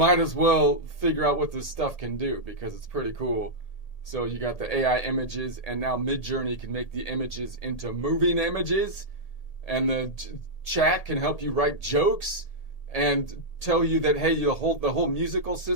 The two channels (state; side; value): late; right; 1.8 ms